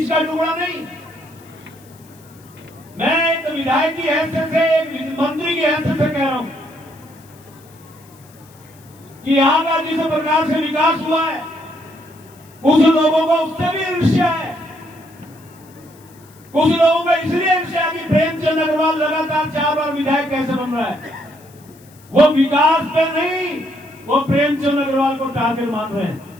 का टुकड़ा नहीं। मैं एक विधायक की हैसियत से, एक मंत्री की हैसियत से कह रहा हूं कि यहां का जिस प्रकार से विकास हुआ है, कुछ लोगों को उससे भी ईर्ष्या है। कुछ लोगों को इसलिए ईर्ष्या कि प्रेमचंद अग्रवाल लगातार 4 बार विधायक कैसे बन रहा है। वो विकास पे नहीं, वो प्रेमचंद अग्रवाल को टारगेट मान रहे हैं।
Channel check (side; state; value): left; noise; hiss, 27 dB below the sound